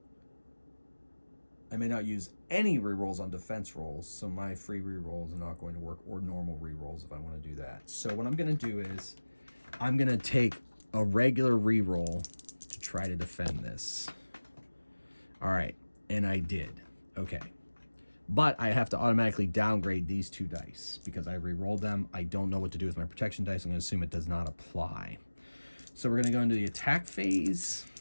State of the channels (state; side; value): inverted; both; correlation -1.00